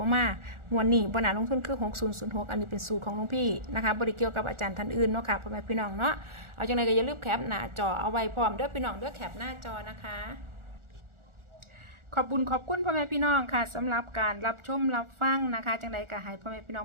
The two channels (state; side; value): late; left; 1.4 ms